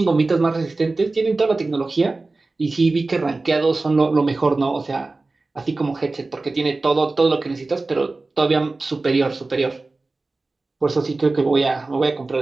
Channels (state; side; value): quieter; left; 3.4 dB